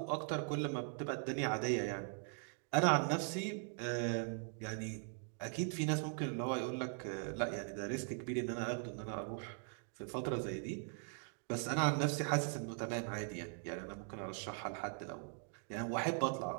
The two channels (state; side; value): silent; left; 51 dB below the other